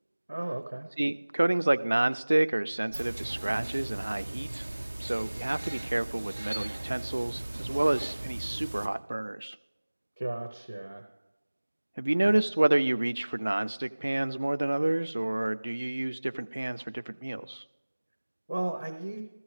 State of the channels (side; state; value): both; inverted; correlation -1.00